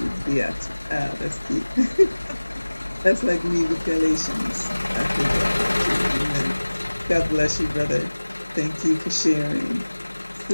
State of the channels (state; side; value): inverted; both; correlation -1.00